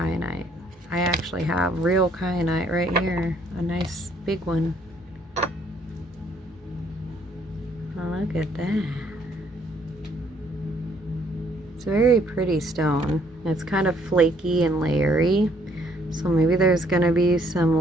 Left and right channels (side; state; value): both; normal; correlation 0.65